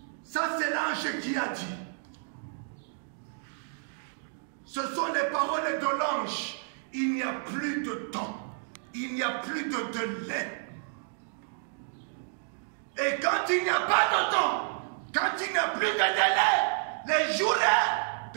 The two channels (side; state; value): left; silent; digital silence